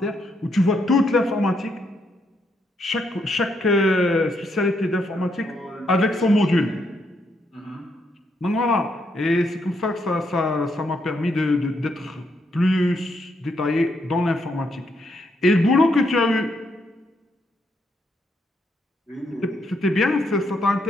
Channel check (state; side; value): normal; both; correlation 0.77